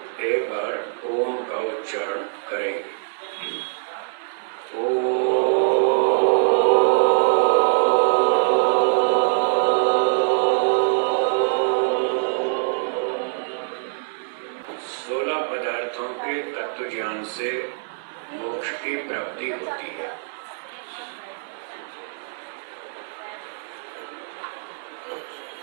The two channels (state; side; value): silent; left; 63 dB below the other